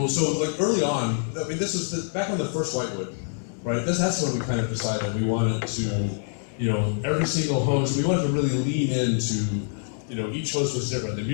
So like early on, I mean, this was back on the first Whitewood. Right, that's when we kind of decided we wanted to, every single host, we wanted to really lean into, each host was different. The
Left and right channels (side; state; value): right; silent; 61 dB below the other